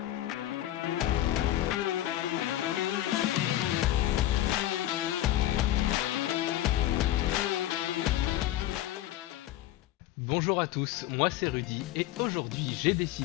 Bonjour à tous, moi c'est Rudy et aujourd'hui j'ai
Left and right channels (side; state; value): right; quieter; 14.0 dB